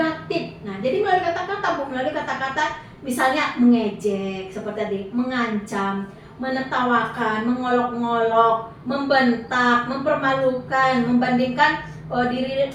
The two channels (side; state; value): both; identical; correlation 1.00